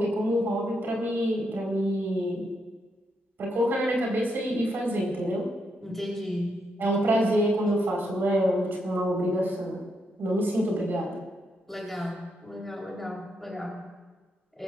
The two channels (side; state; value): both; normal; correlation 0.80